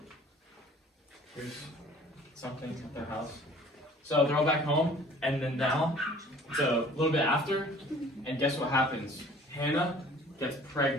Here's something at their house. So they're all back home, and then now it's a little bit after, and guess what happens? Hannah gets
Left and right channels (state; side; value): normal; both; correlation 0.51